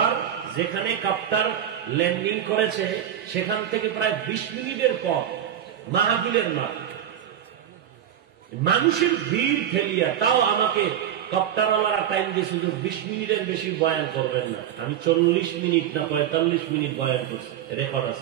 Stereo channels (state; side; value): quieter; left; 10.2 dB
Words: যেখানে কাপ্টার ল্যান্ডিং করেছে সেখান থেকে প্রায় 20 মিনিটের পর মাহফিলের মাঠ, মানুষের ভিড় ঠেলিয়া তাও আমাকে কপ্টারওয়ালারা টাইম দিয়ে শুধু 20 মিনিটের বেশি বয়ান করবেন না। আমি 40 মিনিট না 45 মিনিট বয়ান করছি, রেকর্ড